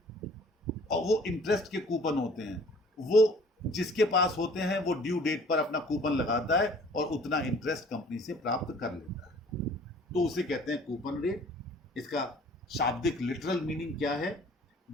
और वो इंटरेस्ट के कूपन होते हैं, वो जिसके पास होते हैं वो ड्यू डेट पर अपना कूपन लगाता है और उतना इंटरेस्ट कंपनी से प्राप्त कर लेता है, तो उसे कहते हैं कूपन रेट। इसका शाब्दिक लिटरल मीनिंग क्या है?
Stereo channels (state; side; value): normal; both; correlation 0.53